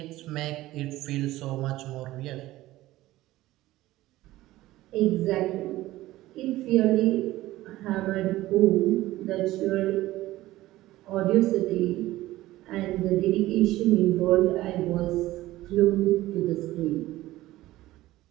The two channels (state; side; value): quieter; left; 16.6 dB